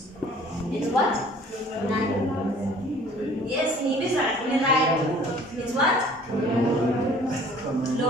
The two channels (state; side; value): normal; both; correlation 0.52